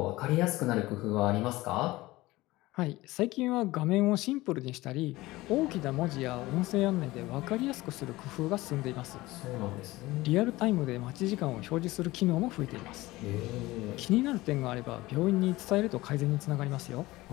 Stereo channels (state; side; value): quieter; right; 19.1 dB